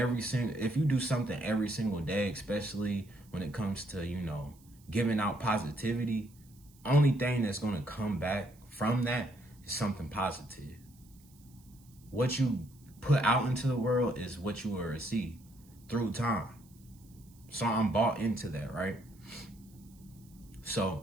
something every single day, especially when it comes to, giving out positivity, only thing that's going to come back from that is something positive. What you put out into the world is what you will receive through time. So I'm bought into that, right?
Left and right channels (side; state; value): right; noise; hiss, 28 dB below the sound